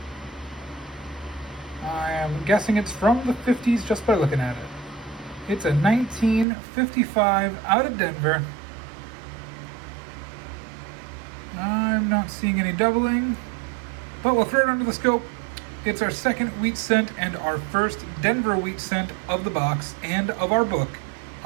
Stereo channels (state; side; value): drops out; left; at 6.5 s